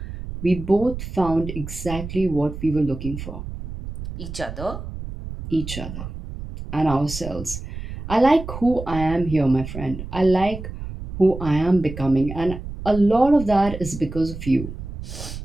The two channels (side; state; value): right; noise; rumble, 9 dB below the sound